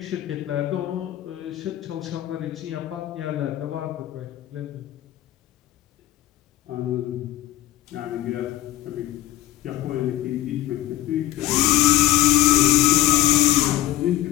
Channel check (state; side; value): quieter; right; 14.4 dB